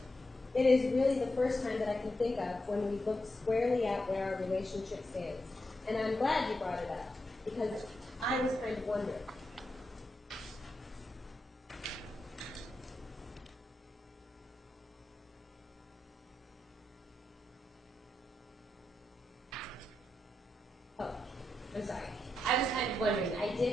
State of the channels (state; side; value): normal; both; correlation 0.86